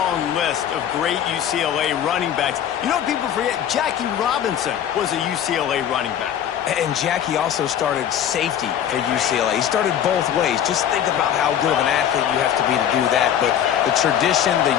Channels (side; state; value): right; quieter; 9.8 dB